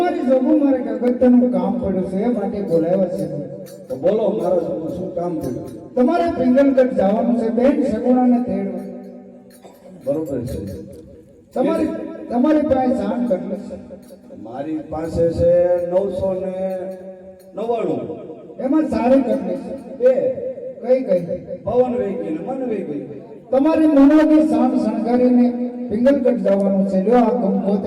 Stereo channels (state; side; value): identical; both; correlation 1.00